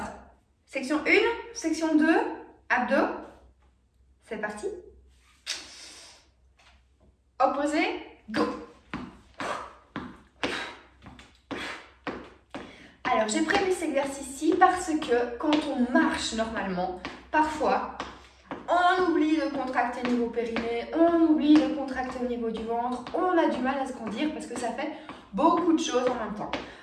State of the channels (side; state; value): both; identical; correlation 1.00